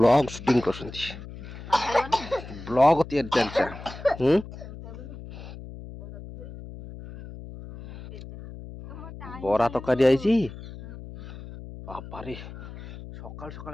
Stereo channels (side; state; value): left; noise; hum, 13 dB below the sound